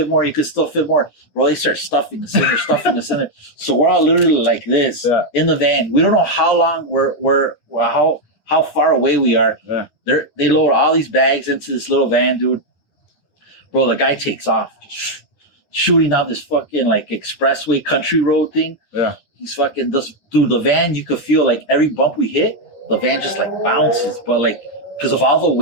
more. Bro, they start stuffing us in there, So we're all literally like this in the van. We don't know how long how far away we are. Yeah. They load all these bags into this little van, dude. Bro, the guy takes off, just shooting out this fucking like expressway country road thing. Yeah. he's fucking this dude. The van, you could feel like every bump we hit, the van just like bounces, but like because of all the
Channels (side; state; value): right; late; 9.9 ms